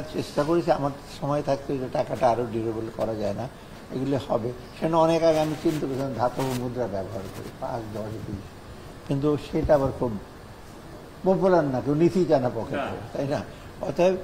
চেষ্টা করেছি আমার সময় থাকতে যে টাকাটা আরও ডিউরেবল করা যায় না, এগুলো হবে। সেটা অনেক আগে আমি চিন্তা করেছিলাম ধাতব মুদ্রা ব্যবহার করি 5, 10, 20, কিন্তু সেটা আবার খুব পপুলার না, কেউ নিতেই চায় না পকেটে, তাই না? অতএব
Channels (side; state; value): both; identical; correlation 1.00